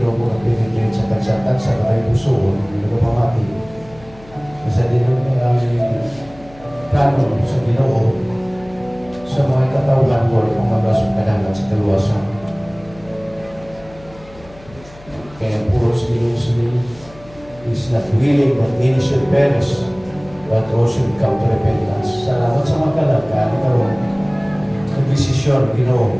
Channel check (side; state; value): left; noise; hum, 22 dB below the sound